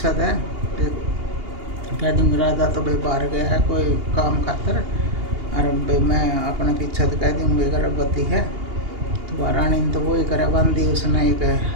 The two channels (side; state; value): left; late; 2.8 ms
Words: है कह दूँगी। राजा तो भाई बाहर गया है कोई काम खातर और भाई मैं अपने पीछे तो कह दूँगी गर्भवती है। तो रानी ने तो वही करे बंदी, उसने एक